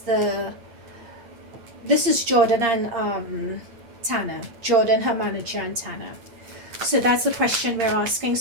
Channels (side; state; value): left; late; 8.7 ms